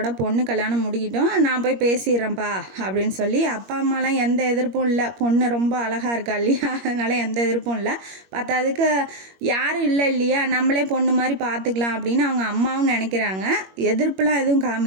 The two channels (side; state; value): left; late; 21 ms